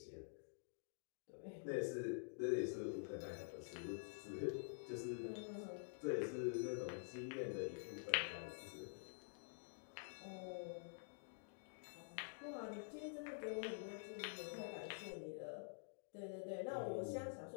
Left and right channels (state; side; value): silent; right; digital silence